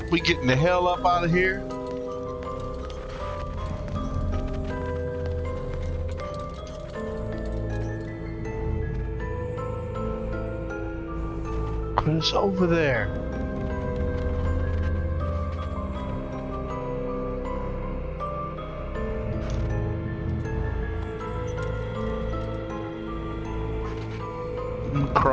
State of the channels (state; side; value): identical; both; correlation 1.00